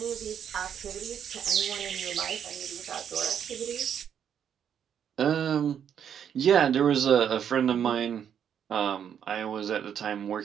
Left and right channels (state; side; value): quieter; left; 8.6 dB